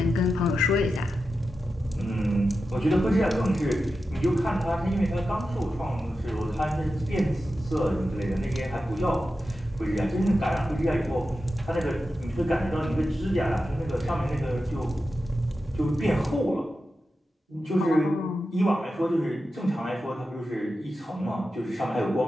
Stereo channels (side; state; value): both; normal; correlation 0.91